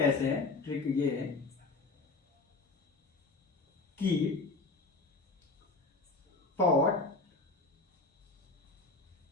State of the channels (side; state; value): right; quieter; 3.6 dB